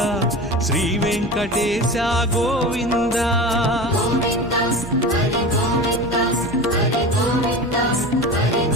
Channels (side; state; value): both; normal; correlation 0.30